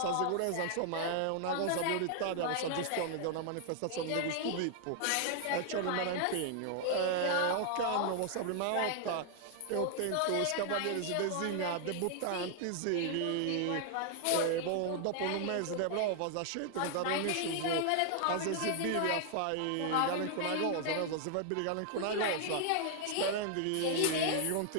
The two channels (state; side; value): different; both; correlation 0.00